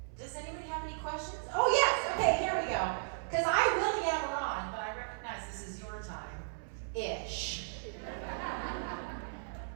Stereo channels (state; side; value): silent; left; 54 dB below the other